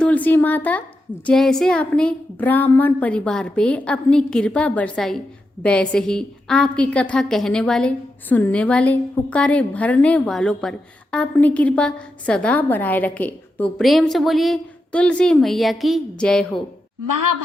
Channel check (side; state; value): both; normal; correlation 0.87